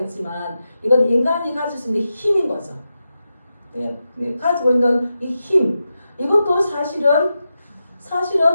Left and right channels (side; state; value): both; inverted; correlation -0.89